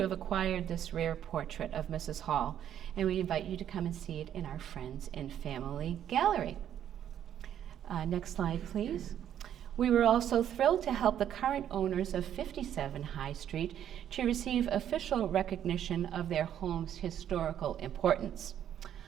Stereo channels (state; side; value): quieter; left; 10.2 dB